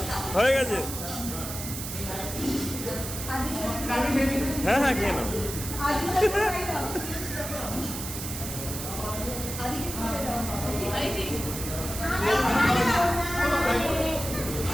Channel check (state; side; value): noise; right; hiss, 7 dB below the sound